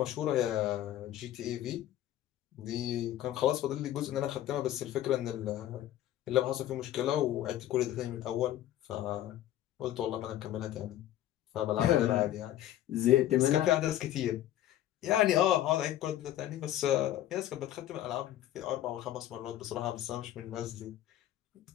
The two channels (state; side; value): quieter; right; 12.9 dB